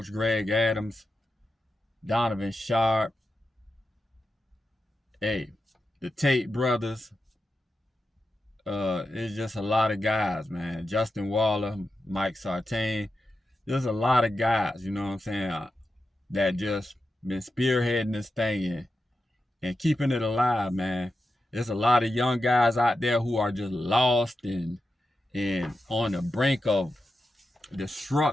Greg Adams, Donovan Sharp, hey, the Tate brothers. It's just a lot of guys, man. Justin Waller, Mike Sartain. There's a lot of guys, you know what I'm saying, that just been spearheading this thing and keeping it alive, man. There's a lot of young guys out there who are just lost and on the brink of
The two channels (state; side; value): normal; both; correlation 0.90